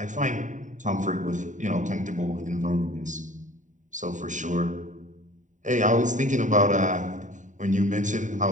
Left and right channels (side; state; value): left; late; 0.36 ms